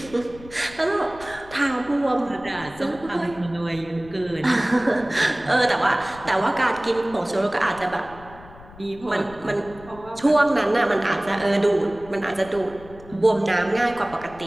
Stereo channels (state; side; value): noise; left; rumble, 20 dB below the sound